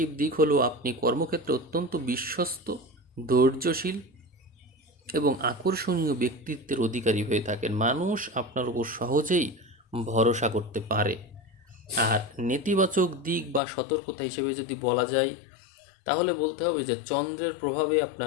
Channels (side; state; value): right; drops out; at 13.6 s